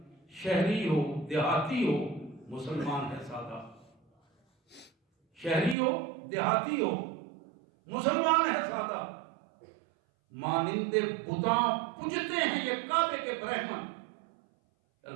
شہری ہو دیہاتی ہو مسلمان ہے سادہ, شہری ہو دیہاتی ہو مسلمان ہے سادہ. مانند بتاں پوجتے ہیں یہ کعبے کے برہمن.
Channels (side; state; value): left; drops out; at 5.8 s